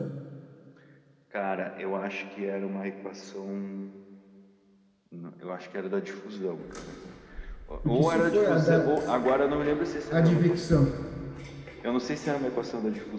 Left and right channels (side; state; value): both; identical; correlation 1.00